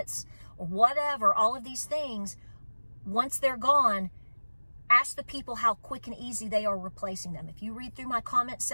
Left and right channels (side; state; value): both; inverted; correlation -1.00